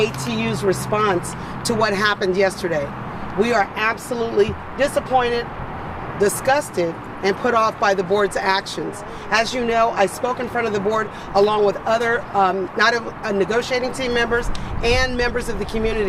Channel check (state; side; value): identical; both; correlation 1.00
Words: response to what happened yesterday. We are absolutely disappointed, disgusted, and put off by the board's actions. As you know, I spoke in front of the board along with other negotiating team members and members of the